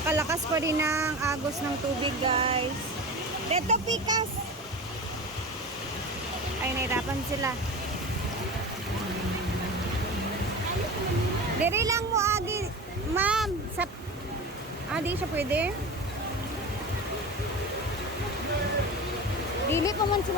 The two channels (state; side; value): normal; both; correlation 0.30